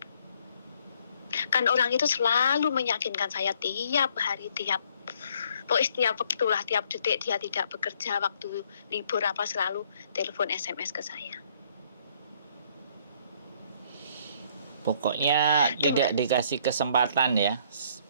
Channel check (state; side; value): inverted; both; correlation -0.64